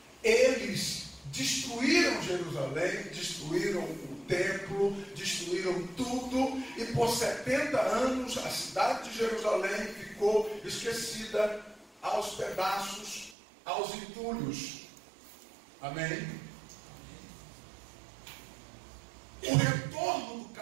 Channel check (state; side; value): drops out; left; at 13.4 s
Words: eles destruíram Jerusalém, destruíram o templo, destruíram tudo, e por 70 anos a cidade de Jerusalém ficou esquecida, aos pedaços, aos entulhos. Amém? O retorno do